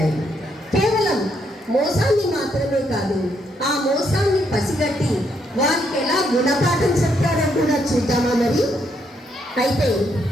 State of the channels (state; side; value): normal; both; correlation 0.75